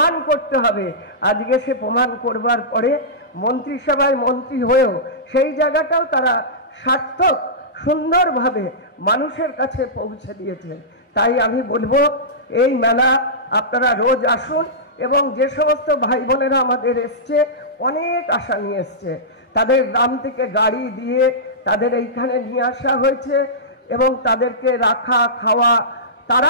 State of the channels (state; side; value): normal; both; correlation -0.16